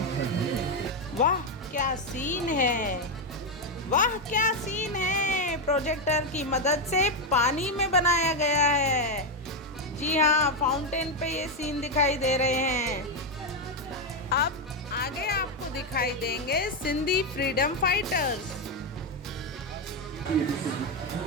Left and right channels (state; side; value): normal; both; correlation 0.05